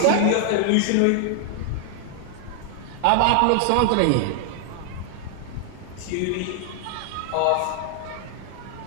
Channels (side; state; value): both; different; correlation 0.00